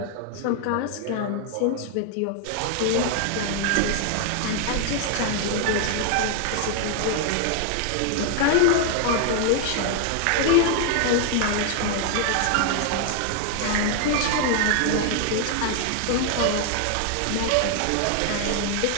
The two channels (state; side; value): different; both; correlation 0.00